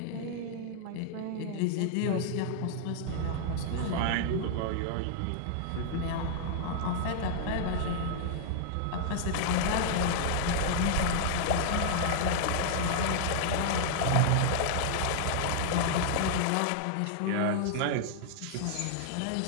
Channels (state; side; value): different; both; correlation -0.01